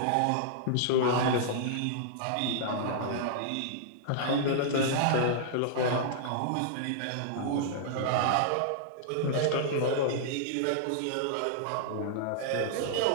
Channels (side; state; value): both; different; correlation -0.01